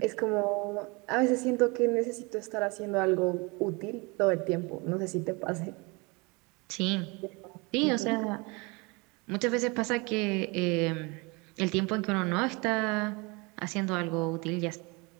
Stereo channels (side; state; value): left; quieter; 27.7 dB